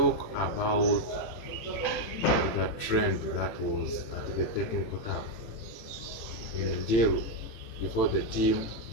about the trend that was at the technical tab in Njeru before the team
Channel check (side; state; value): right; late; 18 ms